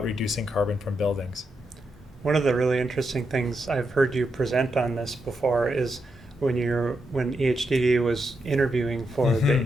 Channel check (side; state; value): both; normal; correlation 0.84